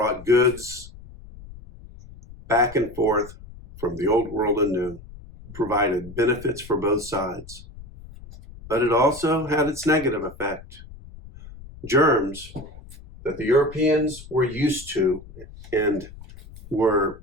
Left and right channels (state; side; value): noise; left; rumble, 18 dB below the sound